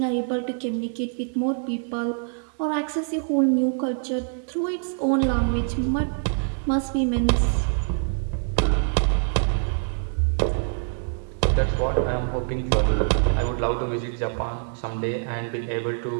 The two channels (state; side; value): silent; left; 62 dB below the other